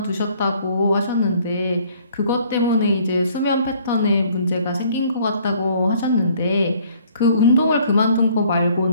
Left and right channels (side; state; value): both; inverted; correlation -0.59